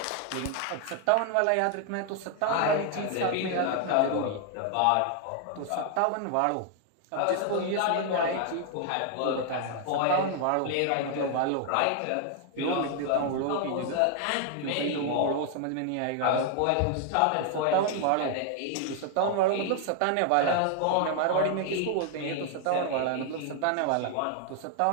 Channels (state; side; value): different; both; correlation 0.00